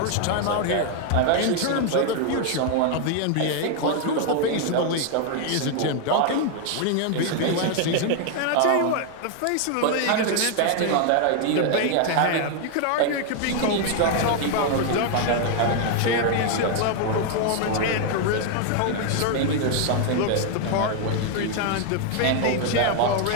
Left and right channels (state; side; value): different; both; correlation 0.00